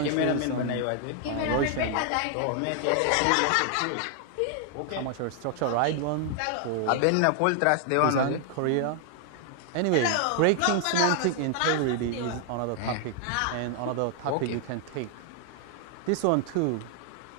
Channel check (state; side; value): different; both; correlation 0.00